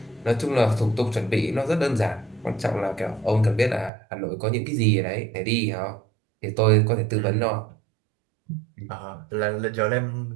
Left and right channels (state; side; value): drops out; left; at 3.9 s